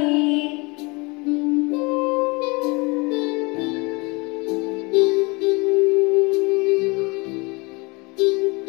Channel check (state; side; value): quieter; right; 27.1 dB